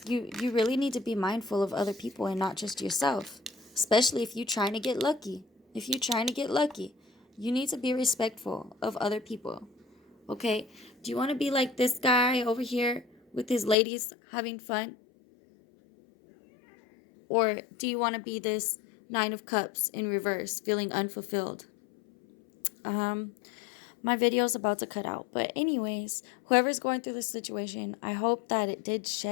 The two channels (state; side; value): drops out; right; at 13.8 s